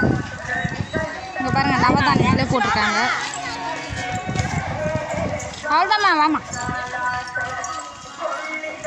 இங்கே பாருங்கள், நவதானியங்களே போட்டிருக்காங்க. அவ்வளோதாம்மா, வாமா.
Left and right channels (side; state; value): both; identical; correlation 1.00